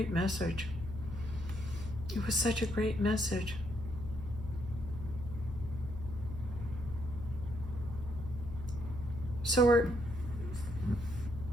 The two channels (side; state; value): left; noise; hum, 9 dB below the sound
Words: message. It was such a great message. So